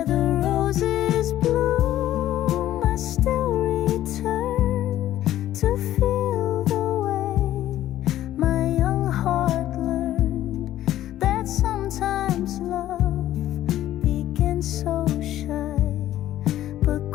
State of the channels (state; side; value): quieter; right; 13.2 dB